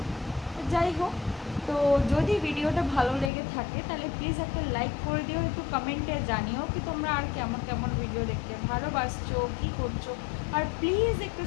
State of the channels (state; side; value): drops out; right; at 3.3 s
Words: যাই হোক, তো যদি ভিডিওটা ভালো লেগে থাকে তাহলে প্লিজ একটা লাইক করে দিও, একটু কমেন্টে জানিও কি তোমরা আর কেমন কেমন ভিডিও দেখতে ভালোবাসছো, কী করছো। আর প্লিজ একটু